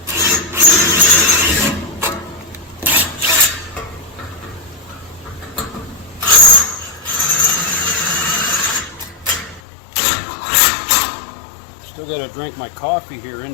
Still got to drink my coffee here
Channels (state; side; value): drops out; right; at 9.6 s